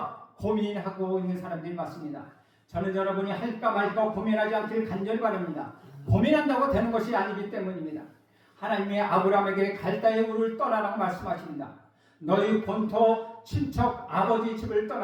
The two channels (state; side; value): identical; both; correlation 1.00